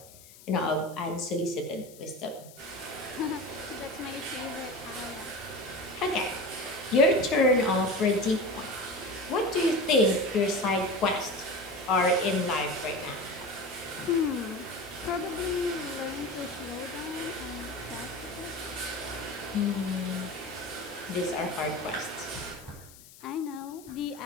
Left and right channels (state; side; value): noise; left; hiss, 21 dB below the sound